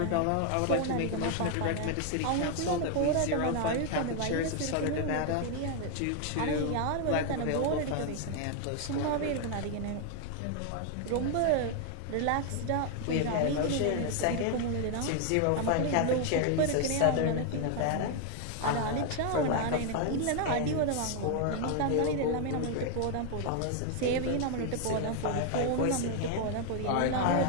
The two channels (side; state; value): both; different; correlation 0.01